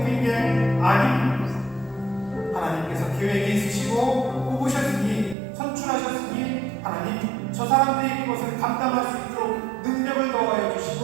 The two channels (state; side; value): drops out; left; at 5.4 s